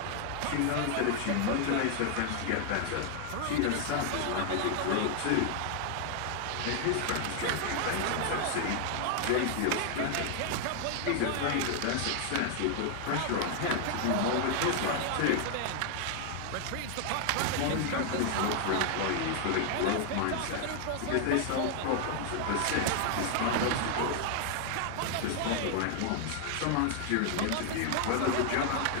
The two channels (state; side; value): different; both; correlation 0.00